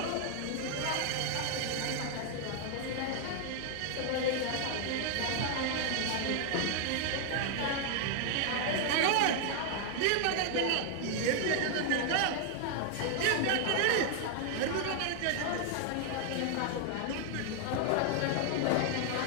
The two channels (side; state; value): both; different; correlation 0.00